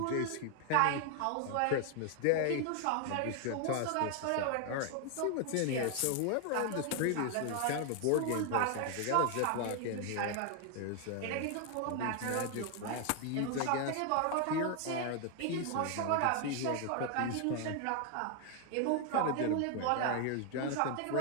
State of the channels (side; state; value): both; different; correlation 0.00